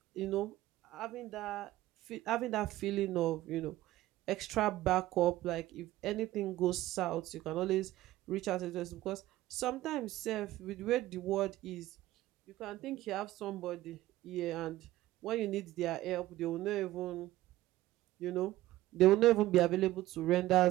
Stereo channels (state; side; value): quieter; left; 16.0 dB